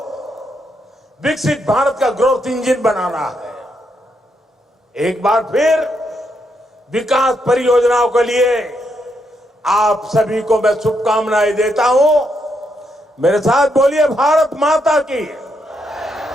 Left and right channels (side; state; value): both; normal; correlation 0.79